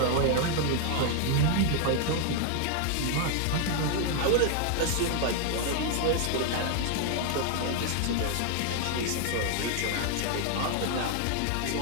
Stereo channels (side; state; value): both; different; correlation 0.00